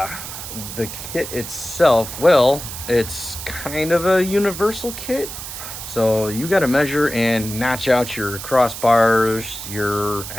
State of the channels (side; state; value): right; noise; hiss, 9 dB below the sound